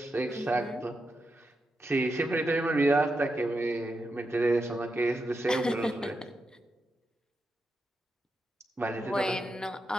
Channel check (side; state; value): both; normal; correlation 0.86